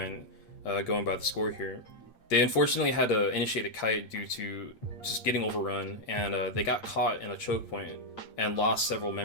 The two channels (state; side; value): late; right; 8.7 ms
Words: going by the score here. They unfortunately had to initiate a kite due to just getting overrun, and they got caught in a choke point and lost several